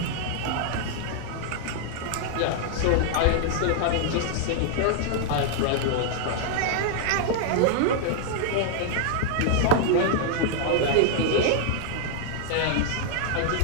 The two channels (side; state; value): both; different; correlation -0.01